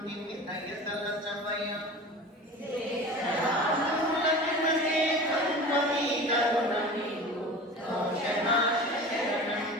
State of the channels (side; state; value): both; normal; correlation 0.35